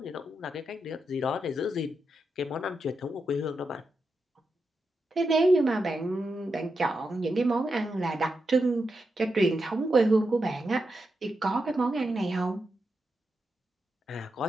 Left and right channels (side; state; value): both; normal; correlation 0.86